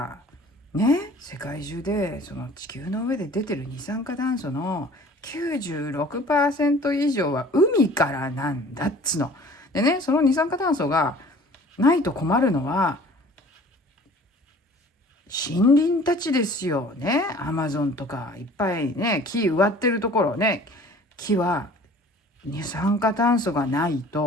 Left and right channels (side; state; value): both; normal; correlation 0.48